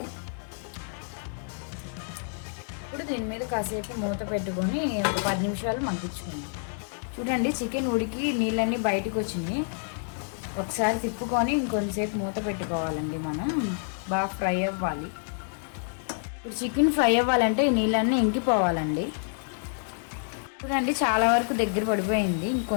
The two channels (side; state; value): right; silent; digital silence